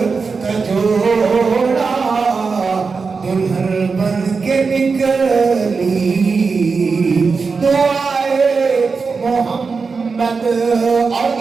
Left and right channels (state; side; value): quieter; left; 4.8 dB